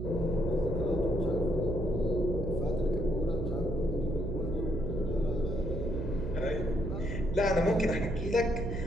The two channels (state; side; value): noise; right; hum, 4 dB below the sound